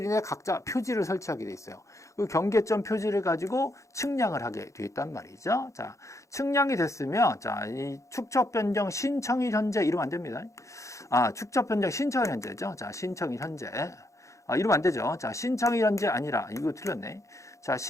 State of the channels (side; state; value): right; late; 0.15 ms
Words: 이내 각자 표지를 설치하게 돼 있어요. 그 경계점 표지를 가지고 측량을 하게 돼 있단 말이죠. 자, 측량이 됐으면 자, 이 축척 변경 신청일 현재 이러면 안 됩니다. 축척 변경 신청일 현재죠. 자, 신청일 현재. 이러면 안 되죠. 자, 신청일 현재 아니라 이거 틀렸네. 자,